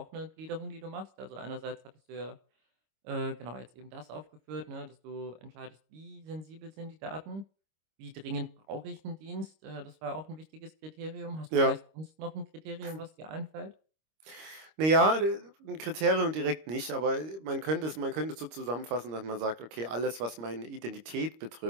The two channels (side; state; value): left; late; 26 ms